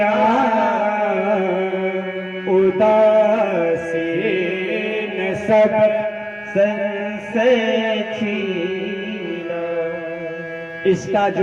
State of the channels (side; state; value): both; identical; correlation 1.00